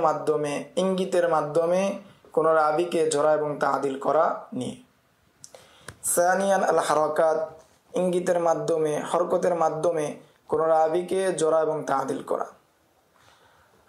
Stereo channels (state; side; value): identical; both; correlation 1.00